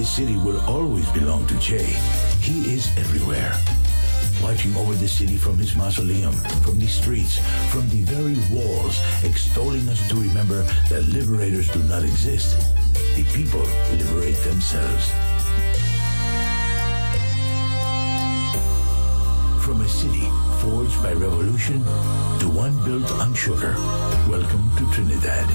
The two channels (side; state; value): both; inverted; correlation -1.00